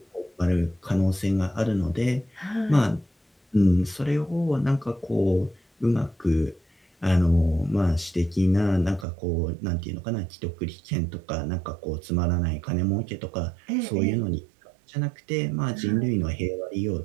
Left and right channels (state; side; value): drops out; left; at 9.1 s